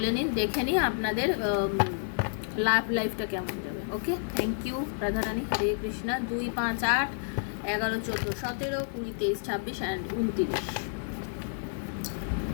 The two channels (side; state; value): right; silent; digital silence